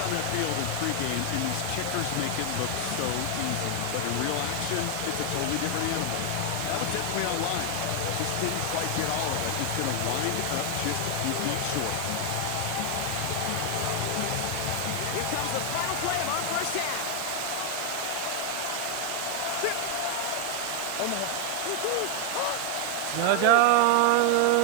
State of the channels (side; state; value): both; different; correlation 0.00